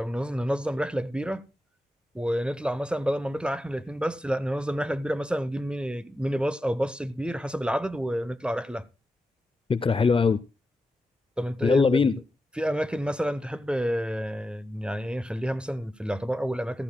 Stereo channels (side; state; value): both; normal; correlation 0.89